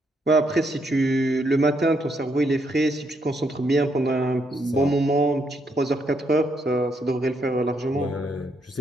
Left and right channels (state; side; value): normal; both; correlation 0.76